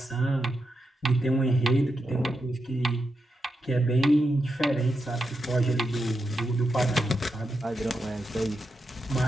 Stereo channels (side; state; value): both; normal; correlation 0.86